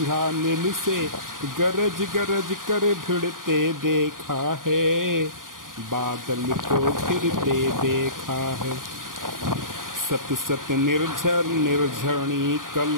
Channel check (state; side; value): late; left; 0.90 ms